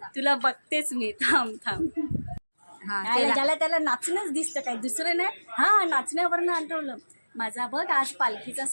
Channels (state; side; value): inverted; both; correlation -1.00